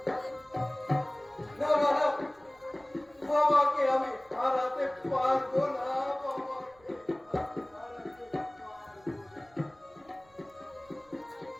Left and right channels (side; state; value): right; noise; rumble, 30 dB below the sound